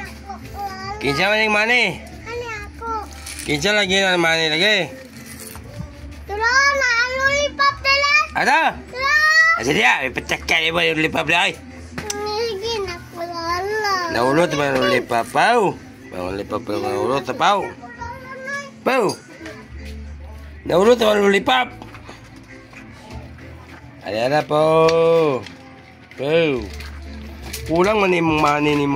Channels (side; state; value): both; identical; correlation 1.00